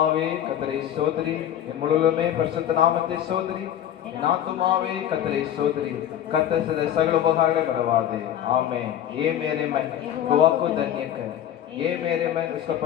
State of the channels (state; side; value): quieter; right; 10.8 dB